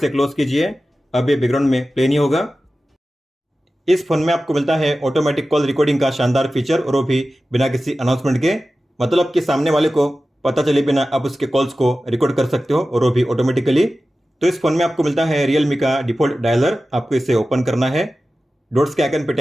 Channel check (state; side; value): normal; both; correlation 0.95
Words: क्लोज कीजिए। अब ये बैकग्राउंड में प्ले नहीं होगा। इस फोन में आपको मिलता है ऑटोमेटिक कॉल रिकॉर्डिंग का शानदार फीचर, और वो भी बिना किसी अनाउंसमेंट के। मतलब कि सामने वाले को पता चले बिना आप उसके कॉल्स को रिकॉर्ड कर सकते हो, और वो भी ऑटोमेटिकली। तो इस फोन में आपको मिलता है रियलमी का डिफॉल्ट डायलर। आपको इसे ओपन करना है। डॉट्स के आइकन पे